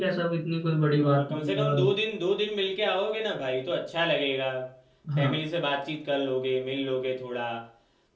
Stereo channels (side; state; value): both; identical; correlation 1.00